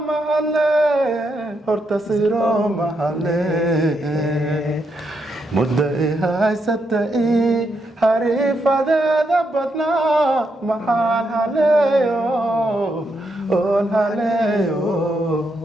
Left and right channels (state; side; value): normal; both; correlation 0.80